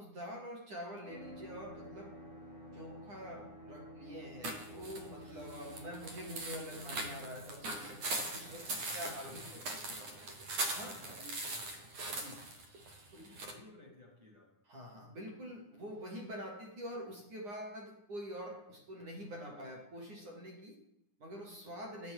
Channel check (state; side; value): late; left; 9.8 ms